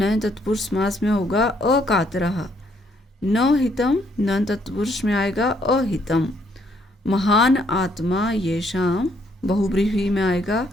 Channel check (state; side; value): normal; both; correlation 0.70